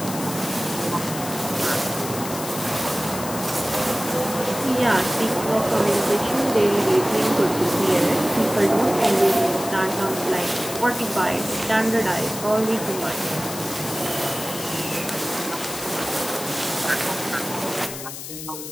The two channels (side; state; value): left; noise; hiss, 9 dB below the sound